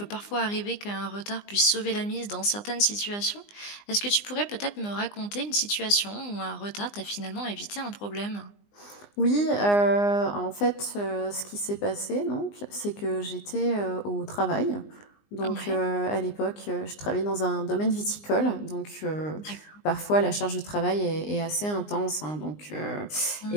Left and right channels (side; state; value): right; late; 20 ms